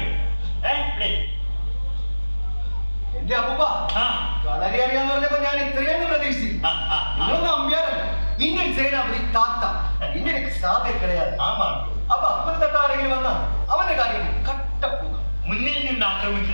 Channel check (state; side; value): inverted; both; correlation -1.00